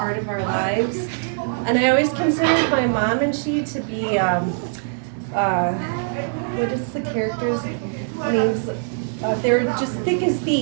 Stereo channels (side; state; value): left; silent; digital silence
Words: of our lives. And I always considered my mom and she to be, what is the character's names? They were just thick as